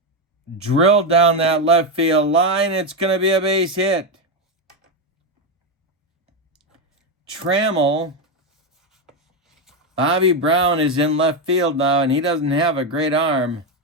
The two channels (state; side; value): normal; both; correlation 0.08